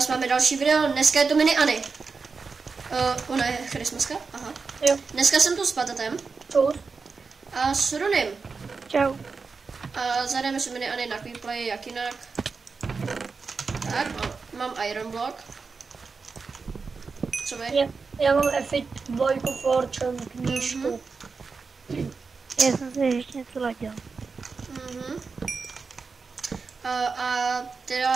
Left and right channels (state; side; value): quieter; left; 4.7 dB